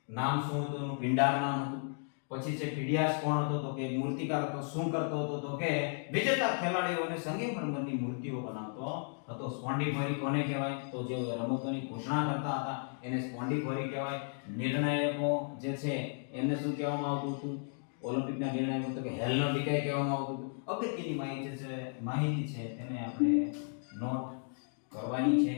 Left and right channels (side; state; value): right; silent; 55 dB below the other